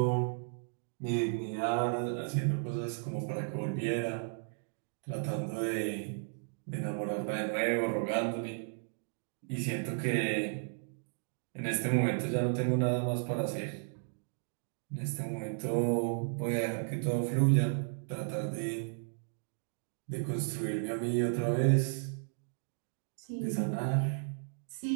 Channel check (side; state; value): left; silent; digital silence